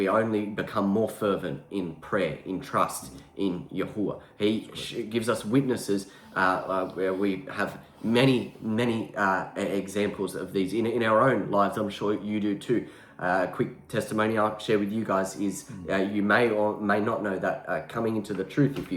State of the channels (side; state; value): both; identical; correlation 1.00